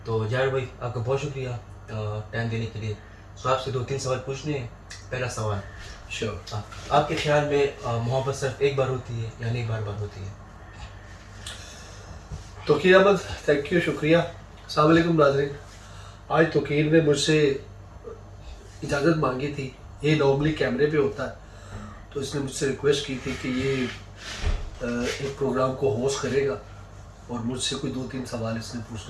तो जाबिर भाई आपका बहुत शुक्रिया टाइम देने के लिए। तो आपसे 2-3 सवाल पूछने हैं। पहला सवाल, श्योर। आपके ख्याल में मोहब्बत सिर्फ एक बार होती है या नहीं बार बार होती है? तौकीर अहमद, थैंक यू, शुक्रिया। अस्सलाम वालेकुम नाज़रीन। आज तौकीर ने मुझसे इजाज़त मांगी थी। ये नॉर्मली कैमरे पे होता है, तो इसने मुझसे रिक्वेस्ट की थी कि ये एक प्रोग्राम को होस्ट करेगा और मुझसे कोई 2-3 सवाल इसने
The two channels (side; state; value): both; identical; correlation 1.00